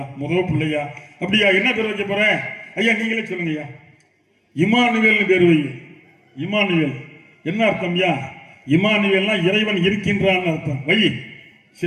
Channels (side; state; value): both; identical; correlation 1.00